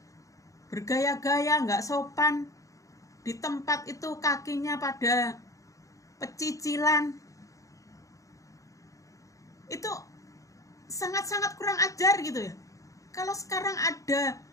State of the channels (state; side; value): late; right; 0.16 ms